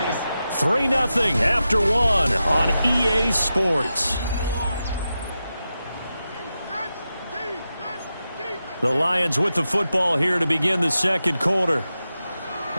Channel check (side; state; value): both; inverted; correlation -0.91